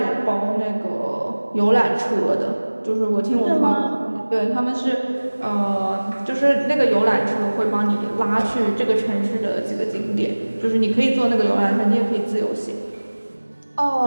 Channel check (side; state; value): both; inverted; correlation -1.00